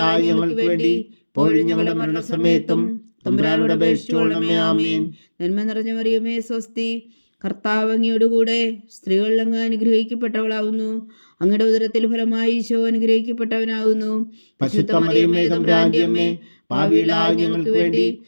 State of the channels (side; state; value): both; inverted; correlation -1.00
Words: ഞങ്ങൾക്ക് വേണ്ടി ഇപ്പോഴും ഞങ്ങളുടെ മരണസമയത്തും തമ്പുരാനോട് അപേക്ഷിച്ചുകൊള്ളണമേ. ആമേൻ. നന്മ നിറഞ്ഞ മറിയമേ സ്വസ്തി, കർത്താവ് അങ്ങയോടുകൂടെ സ്ത്രീകളിൽ അങ്ങ് അനുഗ്രഹിക്കപ്പെട്ടവളാവുന്നു. അങ്ങയുടെ ഉദരത്തിൽ ഫലമായി ഈശോ അനുഗ്രഹിക്കപ്പെട്ടവനാകുന്നു. പരിശുദ്ധ മറിയമേ തമ്പുരാന്റെ അമ്മേ, പാപികളായ ഞങ്ങൾക്ക് വേണ്ടി